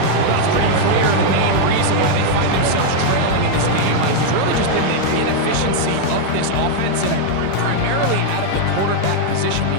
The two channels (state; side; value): different; both; correlation 0.00